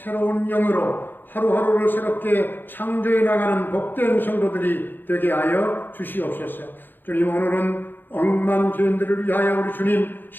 영으로 하루하루를 새롭게 창조해 나가는 복된 성도들이 되게 하여 주시옵소서. 주님, 오늘은 억만 죄인들을 위하여 우리 주님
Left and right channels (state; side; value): late; right; 0.093 ms